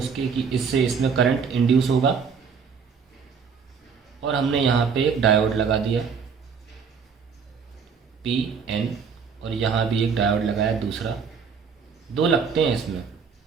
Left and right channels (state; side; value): quieter; left; 6.0 dB